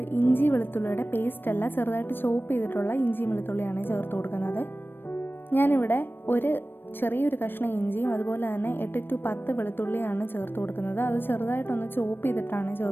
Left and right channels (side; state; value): right; late; 0.097 ms